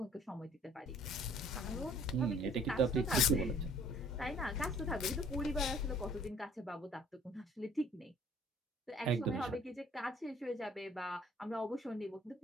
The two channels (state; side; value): normal; both; correlation 0.56